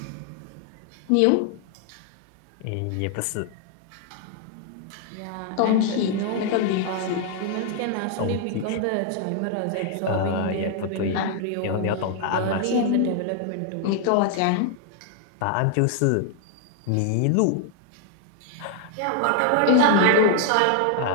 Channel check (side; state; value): both; different; correlation 0.00